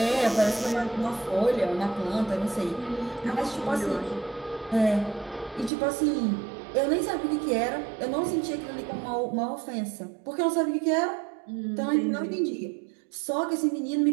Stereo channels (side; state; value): left; drops out; at 5.7 s